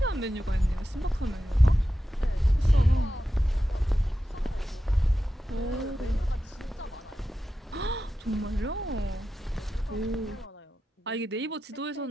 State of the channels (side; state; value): both; normal; correlation 0.91